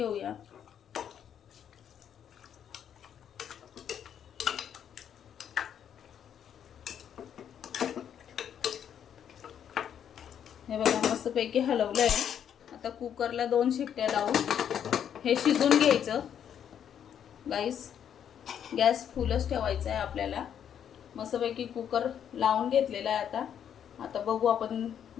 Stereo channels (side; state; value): right; quieter; 8.9 dB